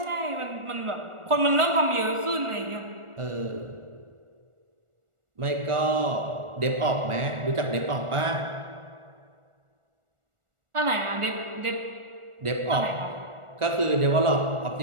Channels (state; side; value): late; left; 1.4 ms